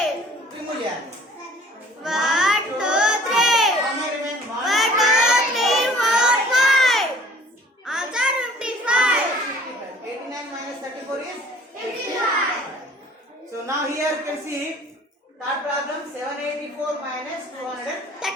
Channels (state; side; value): normal; both; correlation 0.52